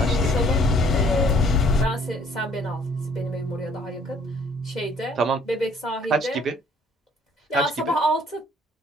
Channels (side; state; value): both; normal; correlation 0.60